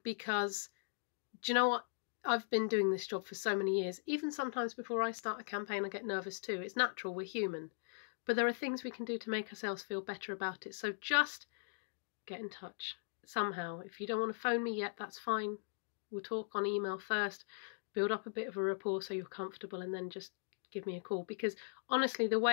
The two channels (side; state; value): right; silent; digital silence